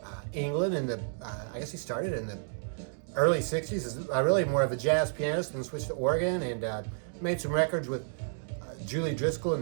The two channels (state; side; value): silent; left; digital silence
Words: England in the, I guess he started in the early 60s. Is really more of a jazz pianist, then switched to organ and made some records with Julie Driscoll